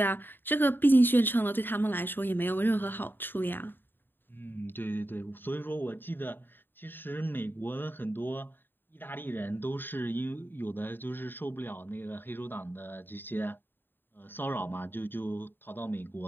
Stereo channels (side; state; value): right; late; 0.096 ms